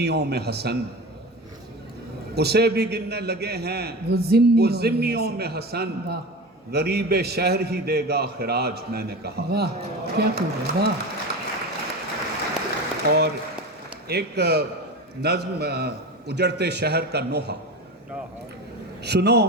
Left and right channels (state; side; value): normal; both; correlation 0.28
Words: میں حسن، اسے بھی گننے لگے ہیں وہ ذمیوں میں حسن، غریب شہر ہی دے گا خراج، میں نے کہا۔ واہ کیا خوب ہے! واہ! اور ایک نظم، اجڑتے شہر کا نوحہ۔ سنو،